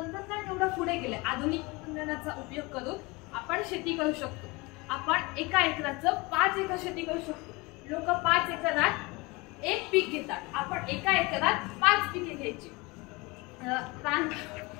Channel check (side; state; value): right; quieter; 24.6 dB